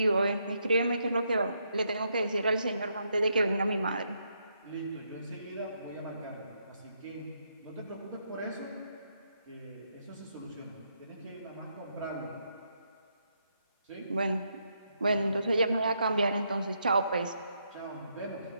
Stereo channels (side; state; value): both; inverted; correlation -0.78